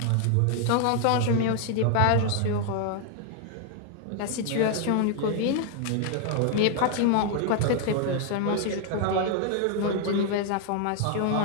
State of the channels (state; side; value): different; both; correlation 0.00